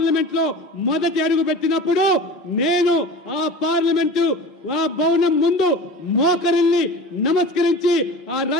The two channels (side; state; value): both; normal; correlation 0.36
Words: లో మొదటి అడుగు పెట్టినప్పుడు నేను ఆ పార్లమెంటు ఆ భవనం ముందు మోకరిల్లి నమస్కరించి ఆ